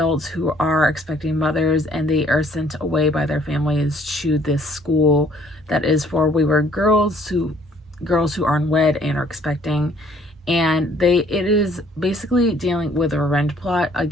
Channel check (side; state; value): both; normal; correlation 0.60